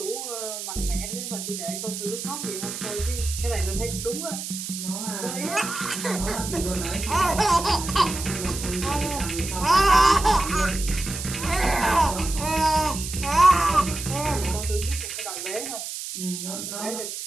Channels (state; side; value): noise; right; hiss, 7 dB below the sound